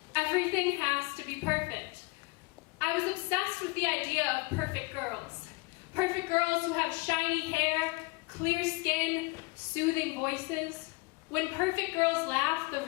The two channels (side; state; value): right; quieter; 25.5 dB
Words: everything has to be perfect. I was obsessed with the idea of perfect girls. Perfect girls who have shiny hair, clear skin, soothing voices. When perfect girls laugh, the